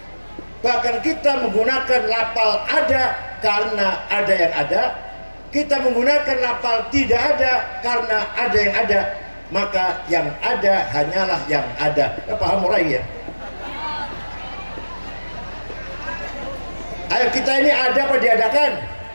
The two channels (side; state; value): both; inverted; correlation -1.00